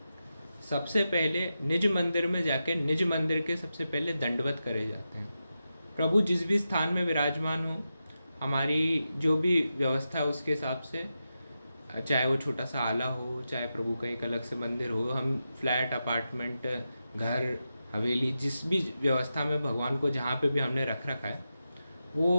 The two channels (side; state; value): both; inverted; correlation -0.90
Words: सबसे पहले निज मंदिर में जाके निज मंदिर के सबसे पहले दंडवत करे जाते हैं। प्रभु जिस भी स्थान में विराजमान हो, हमारी जो भी व्यवस्था है उसके हिसाब से, चाहे वो छोटा सा आला हो, चाहे प्रभु का एक अलग से मंदिर हो, हम फ्लैट, अपार्टमेंट, घर, हवेली, जिस भी व्यवस्था में भगवान को जहाँ पे भी हमने रख रखा है